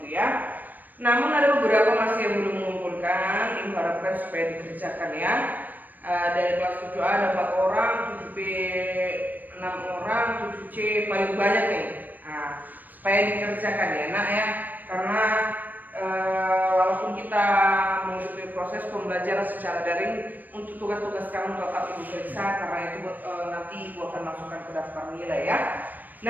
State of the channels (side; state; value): left; late; 0.086 ms